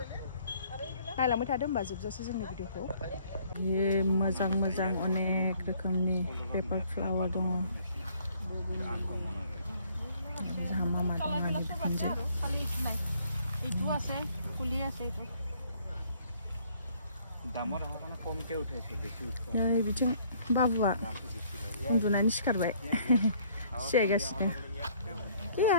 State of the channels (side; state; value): both; inverted; correlation -0.61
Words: नायलांबाय थादो होमबा जोबजासे जोंनि भिडिअखौ मोजां मोजां अनेक रोखोमनि पेपार फ्लावार दङ नै बिथिं बाबुआ उन्दुनानै सिखारबाय सियायगासिनो